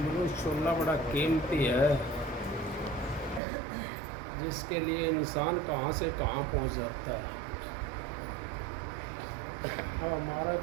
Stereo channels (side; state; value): left; drops out; at 3.4 s